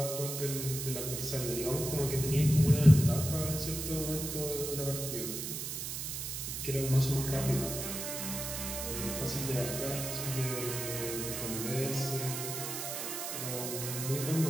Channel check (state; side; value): noise; right; hiss, 5 dB below the sound